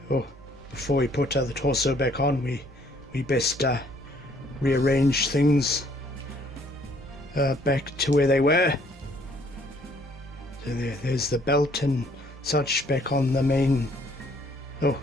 Oh, before we put the torso back on, we best rearrange things back to where they were. So there's the belt and such back on the main. Oh,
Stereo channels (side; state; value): both; normal; correlation 0.63